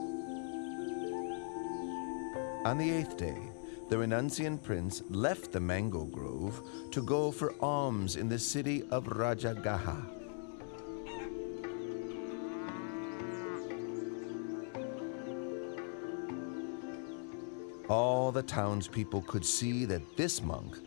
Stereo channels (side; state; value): right; silent; 52 dB below the other